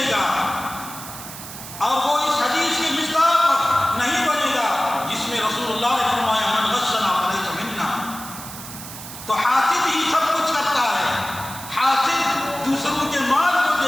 گا، اور وہ اس حدیث کی مصداق نہیں بنے گا جس میں رسول اللہ نے فرمایا من غشنا فلیس منا۔ تو حاسد ہی سب کچھ کرتا ہے، حاسد دوسروں کے مال کو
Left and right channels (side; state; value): right; noise; hiss, 12 dB below the sound